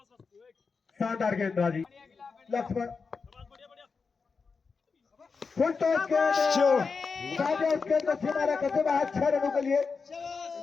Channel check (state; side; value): quieter; right; 5.0 dB